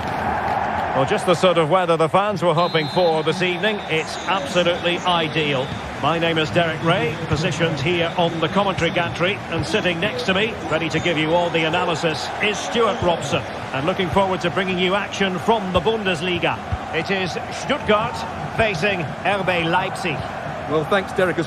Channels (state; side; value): identical; both; correlation 1.00